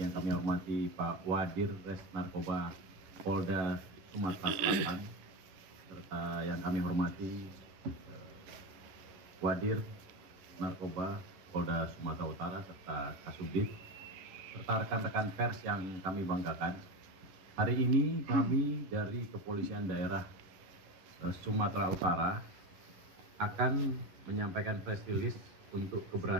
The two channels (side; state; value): left; late; 10 ms